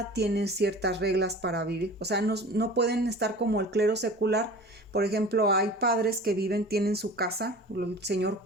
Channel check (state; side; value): normal; both; correlation 0.40